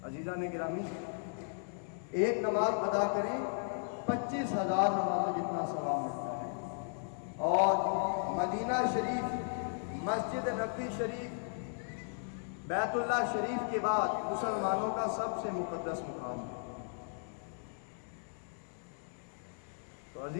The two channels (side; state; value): right; silent; 54 dB below the other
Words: عزیزان گرامی، ایک نماز ادا کریں 25,000 نمازوں جتنا ثواب ملتا ہے۔ اور مدینہ شریف، مسجد نبوی شریف، بیت اللہ شریف کے بعد مسلمانوں کا سب سے مقدس مقام ہے۔ تو